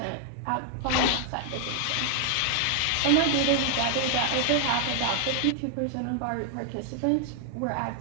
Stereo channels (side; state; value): both; different; correlation 0.00